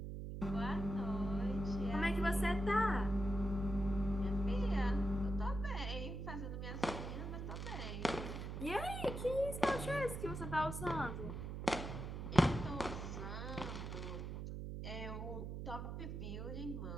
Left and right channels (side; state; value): right; noise; hum, 5 dB below the sound